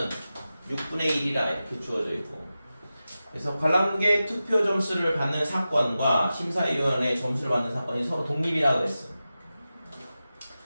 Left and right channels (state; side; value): inverted; both; correlation -0.94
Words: 6분의 1이라 이렇게 주어져 있고 그래서 관람객 투표 점수를 받는 사건과 심사위원의 점수를 받는 사건이 서로 독립이라고 했어.